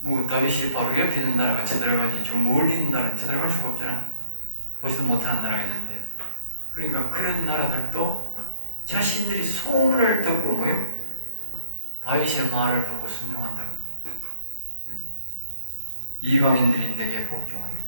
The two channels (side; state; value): both; inverted; correlation -0.51